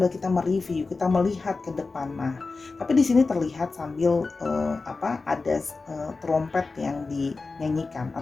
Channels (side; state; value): right; quieter; 3.9 dB